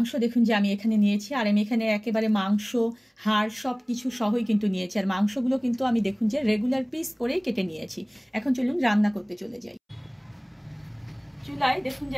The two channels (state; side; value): identical; both; correlation 1.00